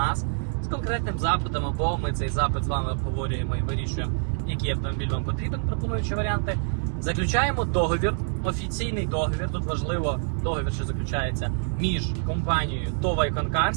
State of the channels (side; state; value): left; silent; digital silence